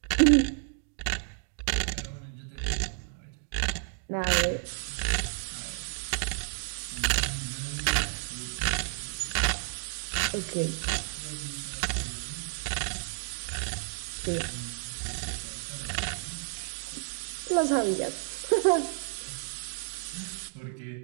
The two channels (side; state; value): left; silent; digital silence